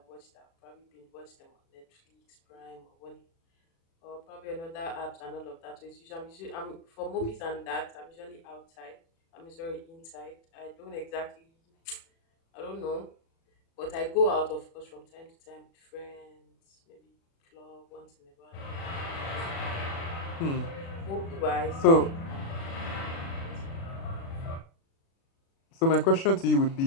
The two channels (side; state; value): right; late; 36 ms